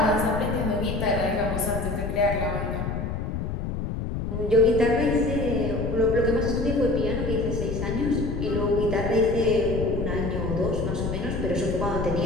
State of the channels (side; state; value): left; noise; rumble, 3 dB below the sound